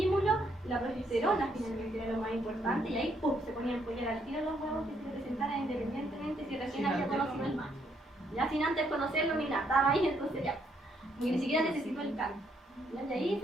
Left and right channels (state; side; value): normal; both; correlation 0.73